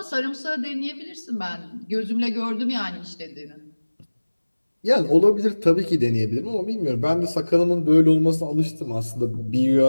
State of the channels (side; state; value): both; inverted; correlation -1.00